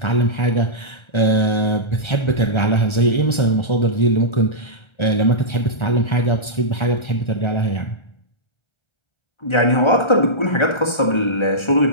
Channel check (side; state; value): right; late; 1.3 ms